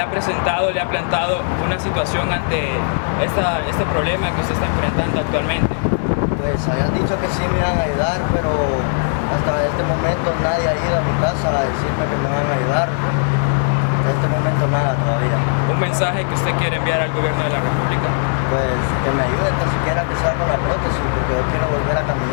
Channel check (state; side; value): silent; right; 67 dB below the other